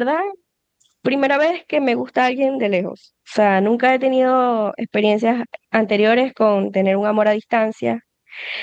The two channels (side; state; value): both; identical; correlation 1.00